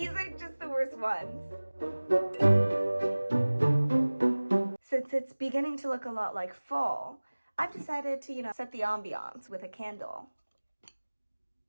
are just the worst ones. Since it's beginning to look a lot like fall, I've decided to, set the ambiance with a candle.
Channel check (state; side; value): inverted; both; correlation -1.00